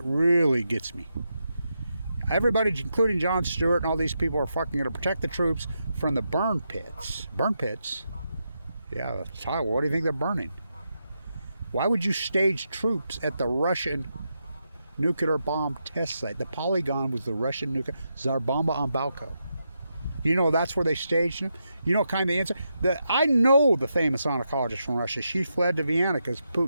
really gets me. Everybody, including Jon Stewart and all these people, are fucking going to protect the troops from the burn pits. Burn pits? Yeah, what do you think they're burning? Why would you stage troops at the Russian nuclear bomb test site? The Polygon was the Russian nuclear... Tsarbomba on Balco. You know that's where they staged them? You know kind of the answer? I know the famous oncologist from Russia. She fled to Vienna because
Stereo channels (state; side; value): inverted; both; correlation -0.84